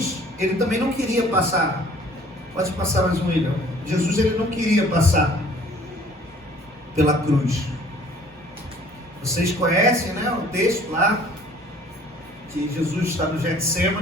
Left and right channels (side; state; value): both; normal; correlation 0.54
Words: ele também não queria passar. Pode passar mais um, William. Jesus, ele não queria passar pela cruz. Vocês conhecem, né, o texto lá, que Jesus está no